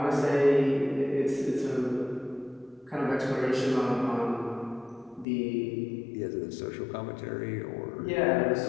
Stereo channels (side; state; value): right; drops out; at 5.2 s